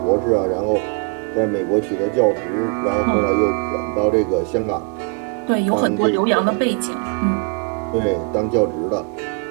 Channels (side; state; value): left; quieter; 38.5 dB